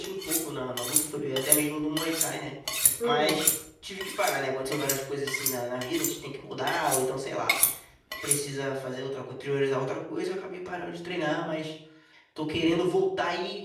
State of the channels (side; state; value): both; identical; correlation 1.00